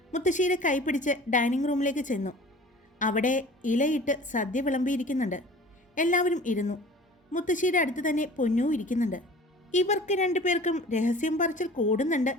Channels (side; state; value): both; normal; correlation 0.44